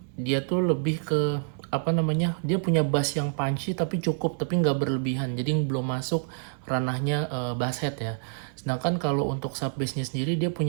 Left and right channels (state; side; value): silent; left; 60 dB below the other